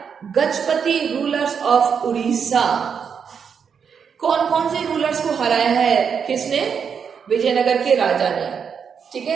Gajapati rulers of Orissa. कौन कौन से रूलर्स को हराया है किसने? विजयनगर के राजा ने। ठीक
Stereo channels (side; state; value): left; quieter; 6.8 dB